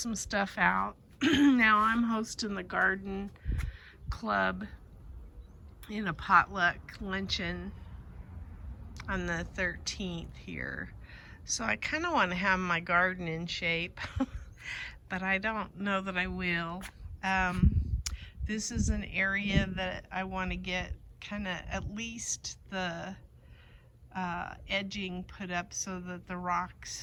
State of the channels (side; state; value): both; identical; correlation 1.00